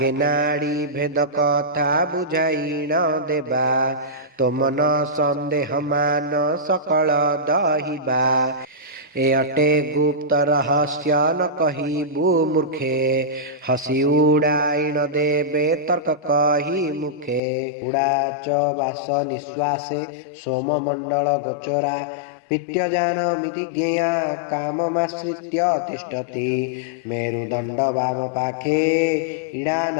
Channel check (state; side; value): drops out; right; at 17.4 s